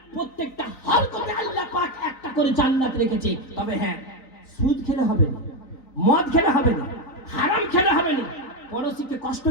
প্রত্যেকটা হরকতে আল্লাহ পাক একটা করে জান্নাত রেখেছে। তবে হ্যাঁ, সুদ খেলে হবে না, মদ খেলে হবে না, হারাম খেলে হবে না, পড়োশিকে কষ্ট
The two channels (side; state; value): right; late; 3.9 ms